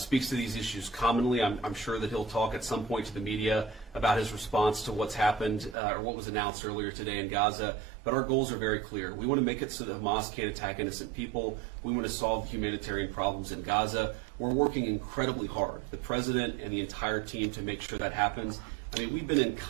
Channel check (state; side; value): drops out; left; at 5.8 s